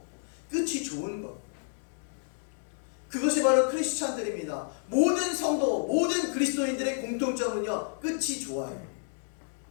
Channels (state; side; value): silent; right; 58 dB below the other